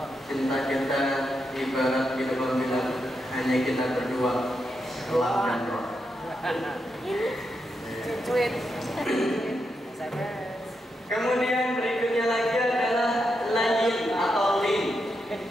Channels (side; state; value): both; normal; correlation 0.84